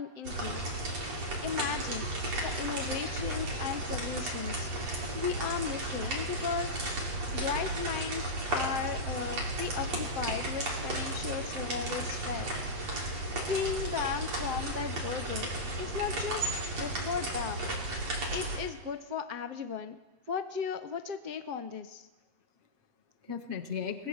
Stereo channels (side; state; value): left; late; 8.4 ms